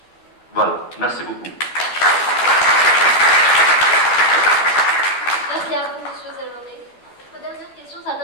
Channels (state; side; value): late; right; 12 ms